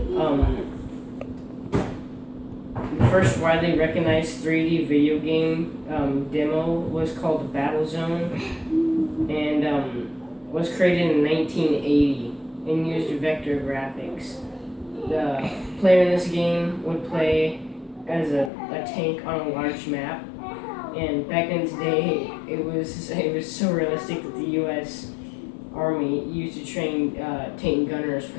The first widely recognized 3D video game demo was called Battlezone, and was created in 1980 and used vector graphics. The player in this game would play as a tank on a large map, and back in its day, it was so realistic that the U.S. Army used to train tank gunners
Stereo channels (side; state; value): right; drops out; at 18.5 s